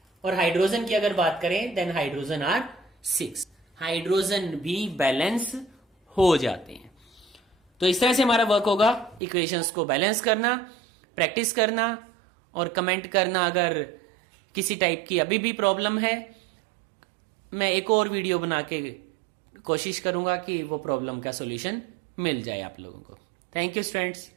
और हाइड्रोजन की अगर बात करें देन हाइड्रोजन आर 6, हाइड्रोजन भी बैलेंस हो जाते हैं। तो इस तरह से हमारा वर्क होगा, इक्वेशंस को बैलेंस करना, प्रैक्टिस करना और कमेंट करना अगर किसी टाइप की अभी भी प्रॉब्लम है। मैं एक और वीडियो बना के कोशिश करूंगा कि वो प्रॉब्लम का सॉल्यूशन मिल जाए आप लोगों को। Thank you students.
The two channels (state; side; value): drops out; left; at 9.2 s